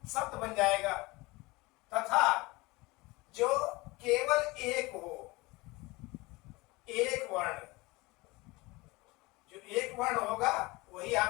शब्द बन जाएगा। तथा जो केवल एक हो, एक वर्ण, जो एक वर्ण होगा वही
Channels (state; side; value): quieter; right; 22.8 dB